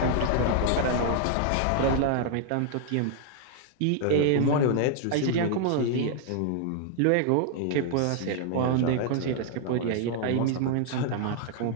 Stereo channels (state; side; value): different; both; correlation 0.00